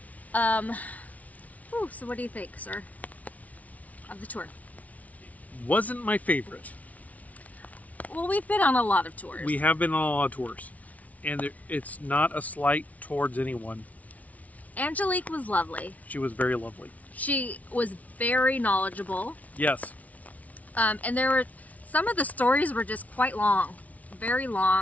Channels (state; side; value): late; right; 0.070 ms